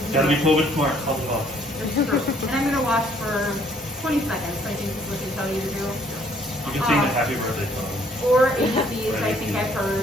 Gotta be COVID smart. Help them out. That's true. And I'm gonna wash for 20 seconds. I think is what they tell you to do. You can sing the happy birthday song. Or ABCs, I think I've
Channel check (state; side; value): normal; both; correlation 0.63